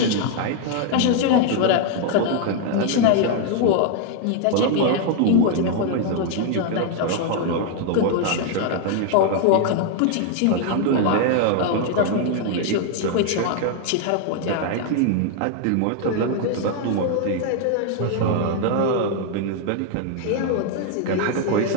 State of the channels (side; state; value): both; different; correlation 0.00